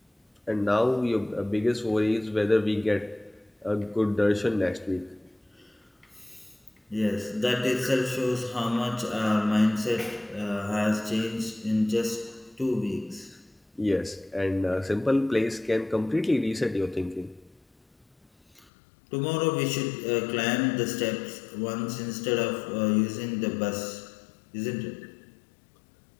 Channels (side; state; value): right; drops out; at 18.7 s